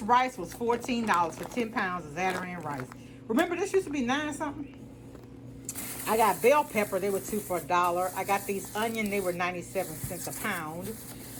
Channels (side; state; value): both; identical; correlation 1.00